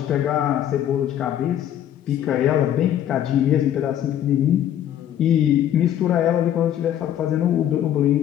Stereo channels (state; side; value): quieter; right; 10.9 dB